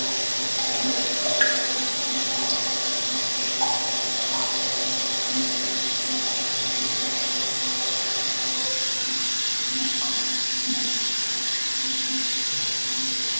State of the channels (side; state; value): both; inverted; correlation -1.00